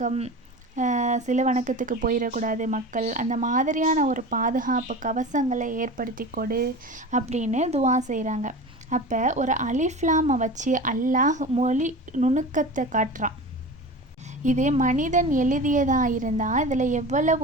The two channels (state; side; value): normal; both; correlation 0.33